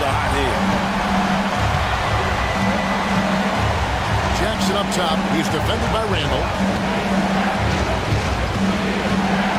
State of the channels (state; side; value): identical; both; correlation 1.00